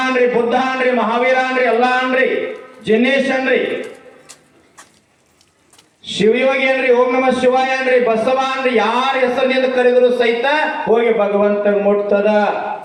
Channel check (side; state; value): both; identical; correlation 1.00